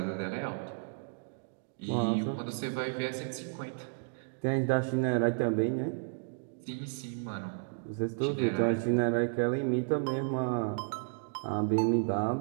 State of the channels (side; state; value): left; silent; digital silence